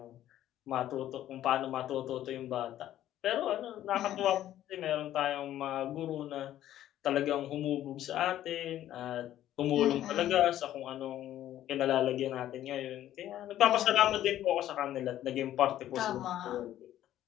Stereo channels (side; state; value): right; quieter; 12.6 dB